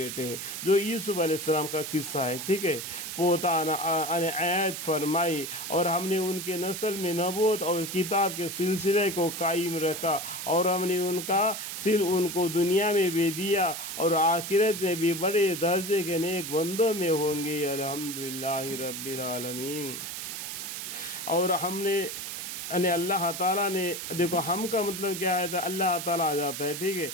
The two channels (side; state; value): right; noise; hiss, 6 dB below the sound